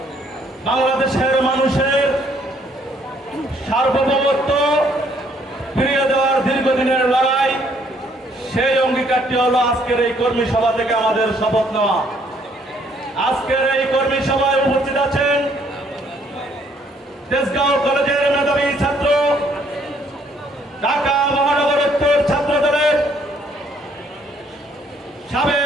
বাংলাদেশের মানুষের সার্বভৌমত্ব ফিরিয়ে দেওয়ার দীর্ঘদিনের লড়াই। সেই অঙ্গীকারটি হলো আজকের এই কর্মী সভা থেকে আমাদের শপথ নেওয়া। আজকের এই কর্মী সভায় উপস্থিত আছেন তেজগাঁও কলেজের মেধাবী ছাত্র, ঢাকা মহানগর উত্তর ছাত্র দলের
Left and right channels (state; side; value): normal; both; correlation 0.66